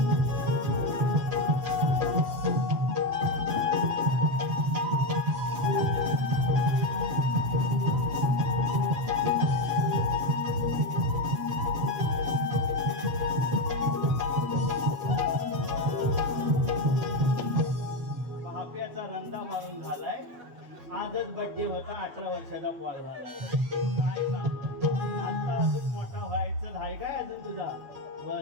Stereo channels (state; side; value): late; left; 7.7 ms